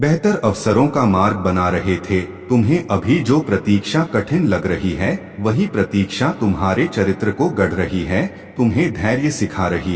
अवसरों का मार्ग बना रहे थे। तुम्हें अभी जो प्रतीक्षा कठिन लग रही है, वही प्रतीक्षा तुम्हारे चरित्र को गढ़ रही है, तुम्हें धैर्य सिखा रही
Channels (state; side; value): identical; both; correlation 1.00